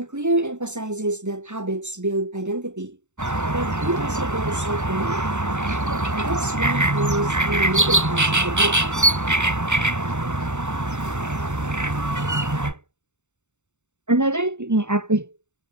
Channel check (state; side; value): late; left; 0.84 ms